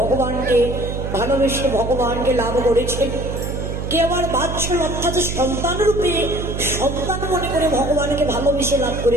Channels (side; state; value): right; noise; hum, 5 dB below the sound